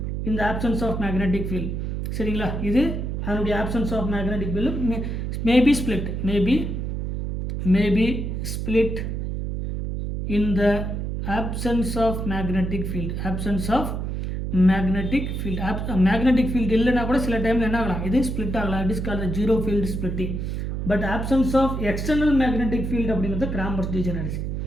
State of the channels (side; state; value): right; noise; hum, 3 dB below the sound